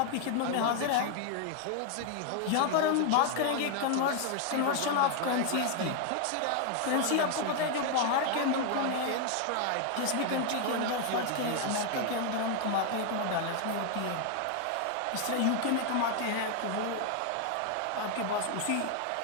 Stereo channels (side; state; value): both; different; correlation 0.00